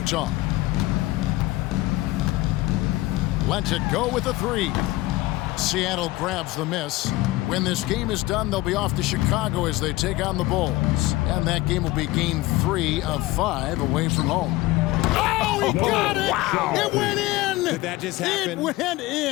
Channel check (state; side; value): quieter; right; 18.7 dB